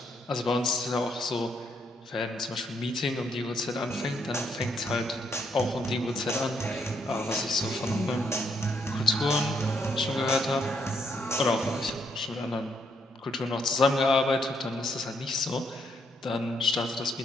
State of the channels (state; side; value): normal; both; correlation 0.75